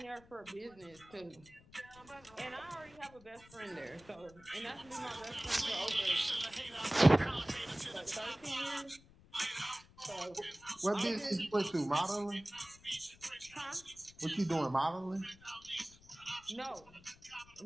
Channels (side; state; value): left; noise; rumble, 24 dB below the sound